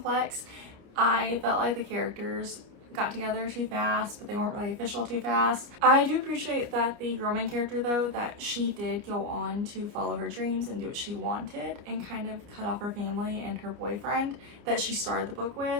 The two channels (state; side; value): late; left; 29 ms